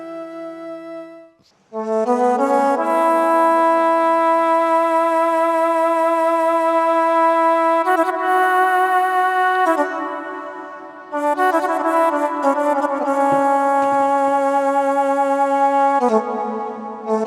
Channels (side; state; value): both; identical; correlation 1.00